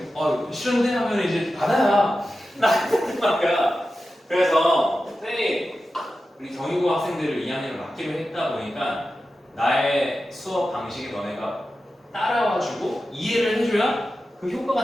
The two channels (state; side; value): normal; both; correlation 0.92